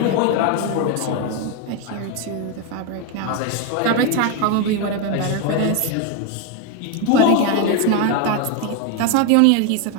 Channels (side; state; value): both; different; correlation 0.01